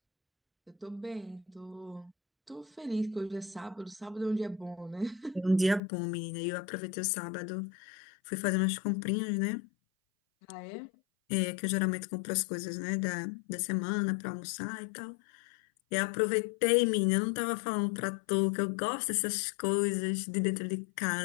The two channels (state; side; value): drops out; right; at 5.8 s